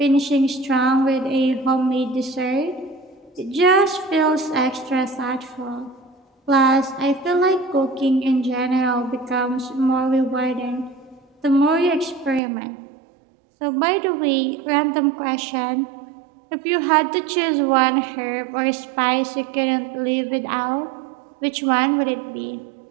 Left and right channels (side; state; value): left; drops out; at 12.4 s